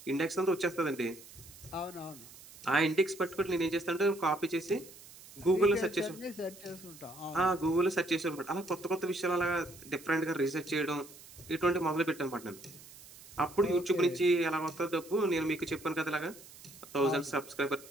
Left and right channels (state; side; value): noise; right; hiss, 19 dB below the sound